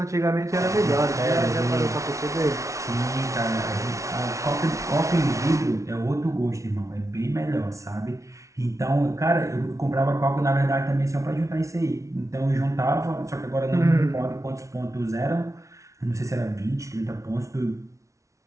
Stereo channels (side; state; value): left; late; 0.15 ms